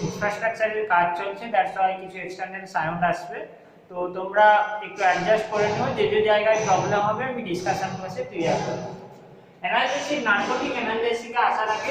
ইনফ্রাস্ট্রাকচারের কাজ চলছে, দ্যাটস ওয়াই কিছু এক্সটার্নাল সাউন্ড আসবে, তো তোমরা একটু অ্যাডজাস্ট করে নিও। যে যে জায়গায় প্রবলেম হবে আমি ডিসকাশন বসে ক্লিয়ার করব। অ্যানালজেসিক নার্কোটিক অ্যানালজেসিকে আসার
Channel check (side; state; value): both; identical; correlation 1.00